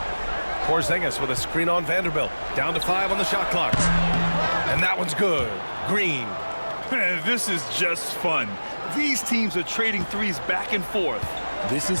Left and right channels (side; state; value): both; inverted; correlation -1.00